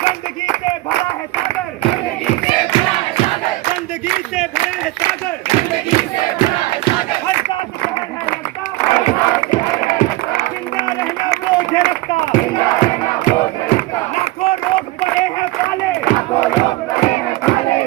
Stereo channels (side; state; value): left; quieter; 18.7 dB